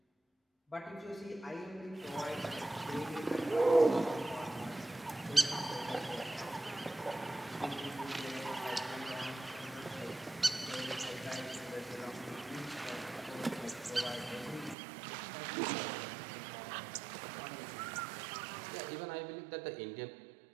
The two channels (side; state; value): left; drops out; at 14.8 s